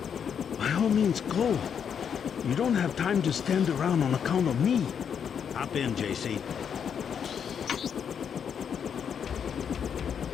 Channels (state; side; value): quieter; right; 7.6 dB